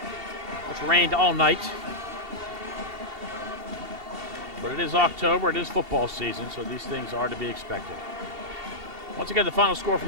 It's rained all night. But it is October, it is football season, so these things are to be expected. Once again, the final score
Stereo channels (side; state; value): left; late; 2.7 ms